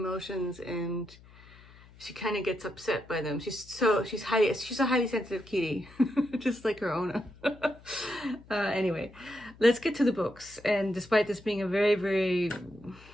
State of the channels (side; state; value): left; noise; hum, 23 dB below the sound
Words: and she kind of gets upset by them. She's a highly sensitive kitty, just like her owner. Anyway, let's get to the books. And despite this being a very, very